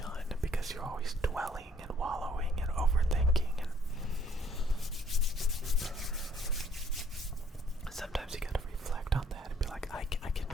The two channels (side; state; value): both; normal; correlation 0.63